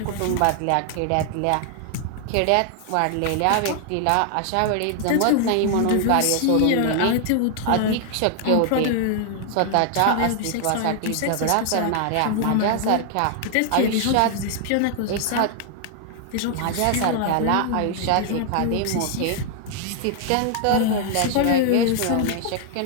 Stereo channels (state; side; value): different; both; correlation 0.00